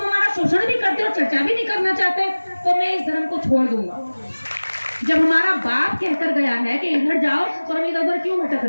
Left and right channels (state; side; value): inverted; both; correlation -1.00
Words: हमारा शोषण भी करते हो, चर्चा भी नहीं करना चाहते, तो मैं इस धर्म को छोड़ दूंगा। जब हमारा बाप कहकर गया है कि इधर जाओ, तो हम इधर क्यों भटक